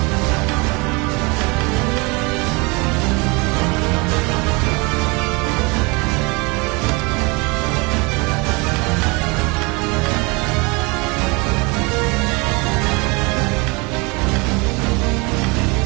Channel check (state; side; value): quieter; left; 27.7 dB